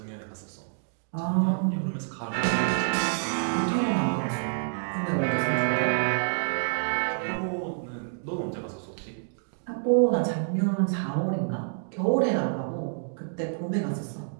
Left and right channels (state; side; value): silent; left; digital silence